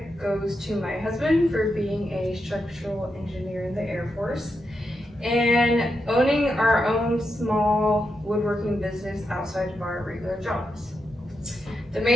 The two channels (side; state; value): both; normal; correlation 0.85